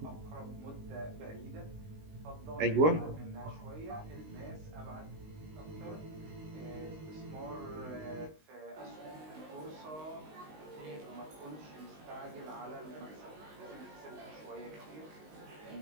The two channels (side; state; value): left; late; 19 ms